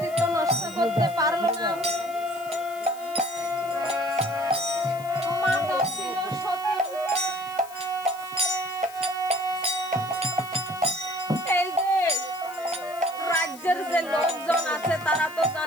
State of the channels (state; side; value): noise; left; hiss, 19 dB below the sound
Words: নষ্ট করতে পারলো না। মাতা ছিল সতী। এই যে রাজ্যের যে লোকজন আছে তারা তো